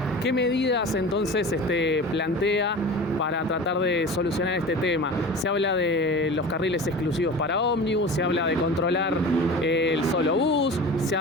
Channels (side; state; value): both; normal; correlation 0.35